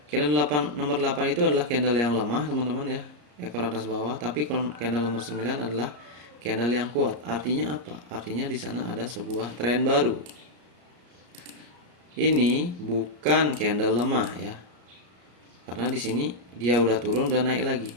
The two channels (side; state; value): left; late; 34 ms